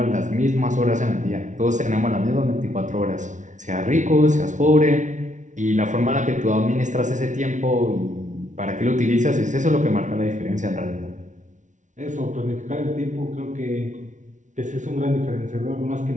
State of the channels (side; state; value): left; late; 0.36 ms